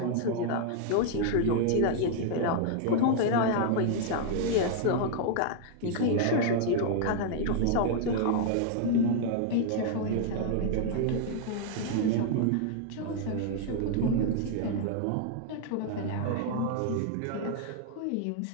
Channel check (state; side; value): different; both; correlation -0.01